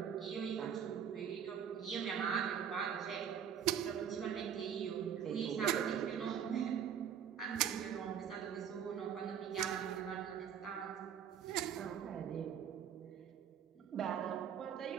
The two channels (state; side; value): quieter; left; 8.4 dB